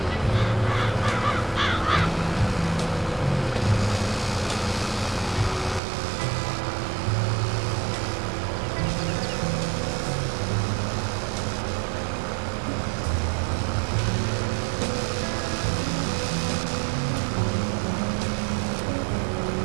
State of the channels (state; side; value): drops out; left; at 5.8 s